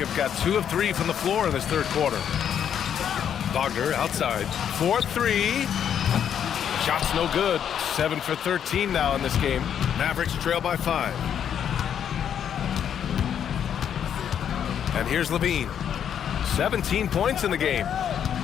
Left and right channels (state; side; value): quieter; right; 8.9 dB